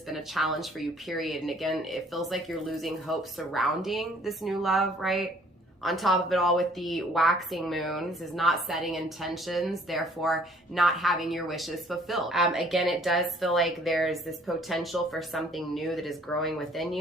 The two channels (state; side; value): normal; both; correlation 0.58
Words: been a challenge for you, period. And again, it feels like you're losing hope surrounding this new love, right? On top of it all, with the waxing moon, this is not setting intentions, therefore not having your wishes fulfilled. Again, it does feel like there's this potential for something new that is growing within